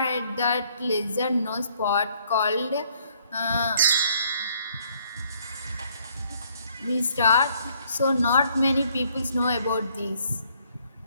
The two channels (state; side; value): inverted; both; correlation -0.66